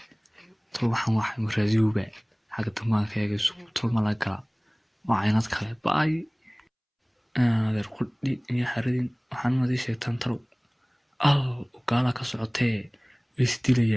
talo waxaan waxay maraadiyowba xagga damaanka eega sug talo ma la gala waa caynad kale baay adeer qudhi iyo xaradin waxaan madii sheegtaan talo gaala ka socotee way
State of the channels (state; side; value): identical; both; correlation 1.00